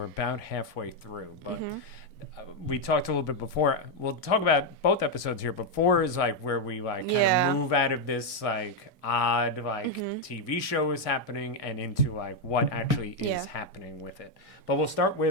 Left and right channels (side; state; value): both; normal; correlation 0.02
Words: about halfway through. But we talked a little bit before. We'll talk about both episodes here, but 4 is like where we kind of move out of this like odd TV show is happening and into like what actually is happening with it. But we'll start